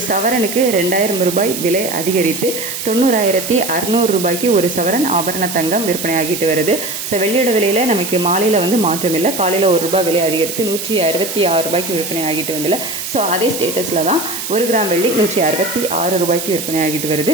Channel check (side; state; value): right; noise; hiss, 6 dB below the sound